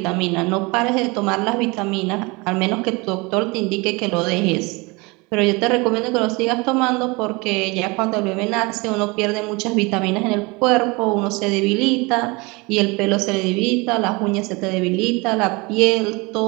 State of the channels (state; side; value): quieter; left; 26.1 dB